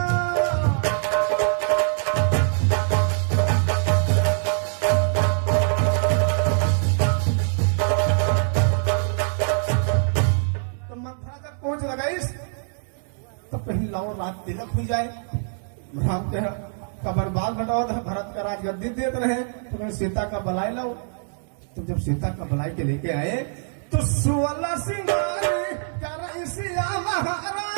लाओ रात तिलक हो जाए, राम का बर्बाद घटाओ, भरत का राजगद्दी देते रहे, तो मैं सीता का बलाई लाओ। तो जब सीता का बलाई के लेके आए तो 16 सिंगारी कर सिया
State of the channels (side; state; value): left; silent; digital silence